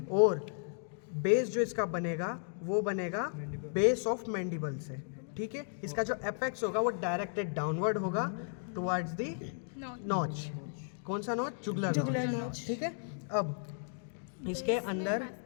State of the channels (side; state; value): right; silent; digital silence